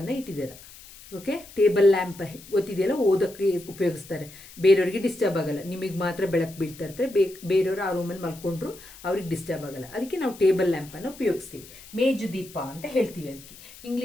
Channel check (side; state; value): left; noise; hiss, 19 dB below the sound